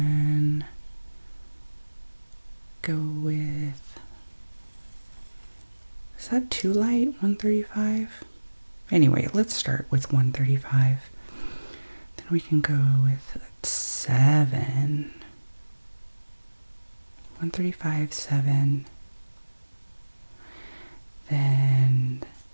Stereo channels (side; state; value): both; inverted; correlation -1.00